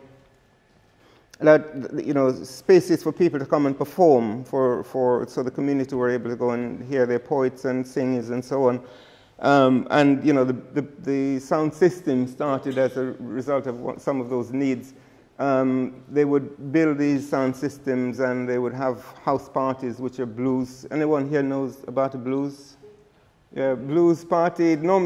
you know, spaces for people to come and perform, so the community were able to go and hear their poets and singers and so on. And, you know, the sound system started as a result of some of those needs. They would build these sound systems, and they would have house parties, which are blues. Anyone here knows about a blues? Yeah, blues party. It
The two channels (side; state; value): both; identical; correlation 1.00